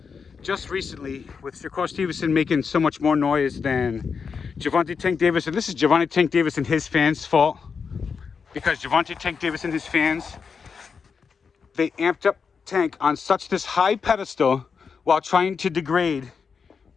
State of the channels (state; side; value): quieter; right; 5.8 dB